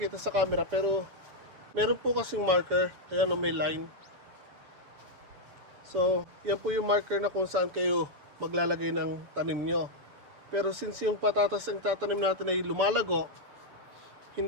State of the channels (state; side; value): late; left; 7.0 ms